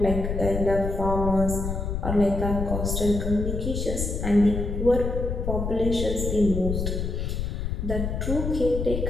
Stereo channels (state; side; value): noise; left; rumble, 2 dB below the sound